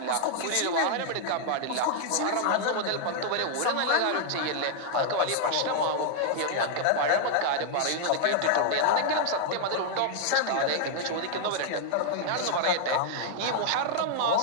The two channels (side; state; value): both; different; correlation -0.01